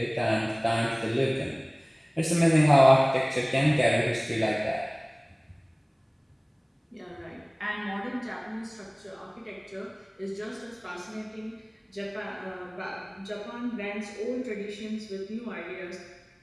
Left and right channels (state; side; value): identical; both; correlation 1.00